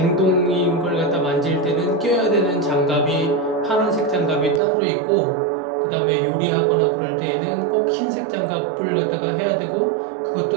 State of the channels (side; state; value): left; drops out; at 4.6 s